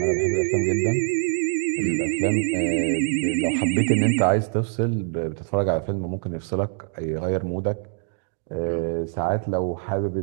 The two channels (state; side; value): silent; left; digital silence